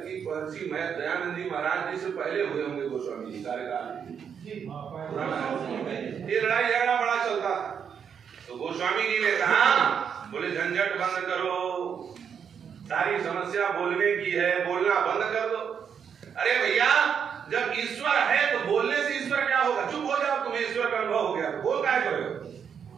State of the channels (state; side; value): quieter; left; 7.4 dB